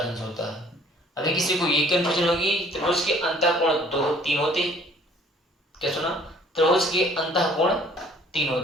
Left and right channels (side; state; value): both; normal; correlation 0.55